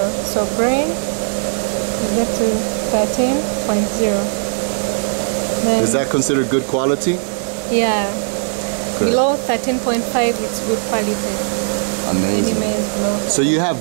So grain, we get to 13.0. Is that considered good quality? Yeah. Good. Below 13.5, it's good quality. Amazing. Any maize below. So you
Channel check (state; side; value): silent; left; digital silence